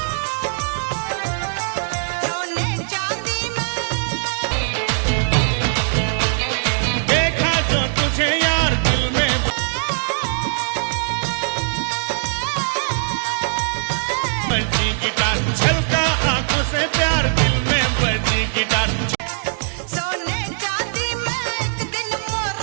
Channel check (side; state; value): left; silent; digital silence